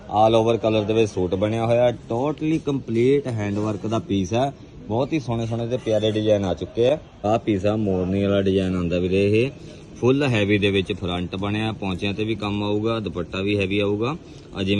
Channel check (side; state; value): both; identical; correlation 1.00